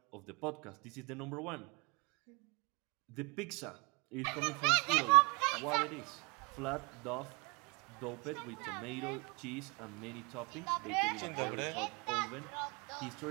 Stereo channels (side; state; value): left; quieter; 29.5 dB